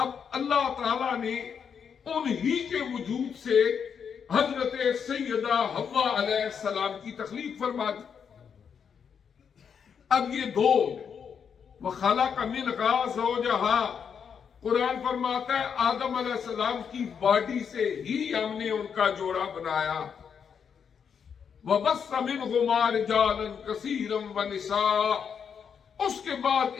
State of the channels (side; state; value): right; quieter; 7.1 dB